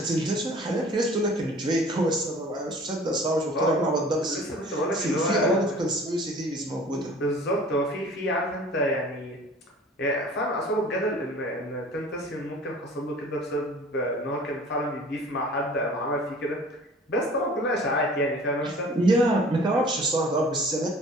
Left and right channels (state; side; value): normal; both; correlation 0.47